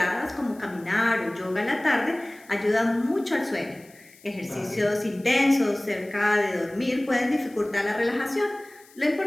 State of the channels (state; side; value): noise; left; hiss, 26 dB below the sound